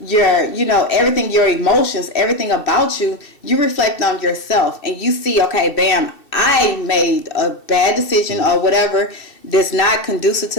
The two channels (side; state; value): right; late; 2.7 ms